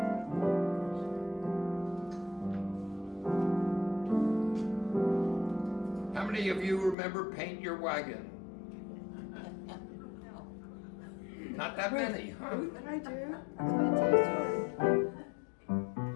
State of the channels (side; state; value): right; drops out; at 7.0 s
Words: How many of you remember Paint Your Wagon? Not that many, huh? I do. I'm going to tell you a story.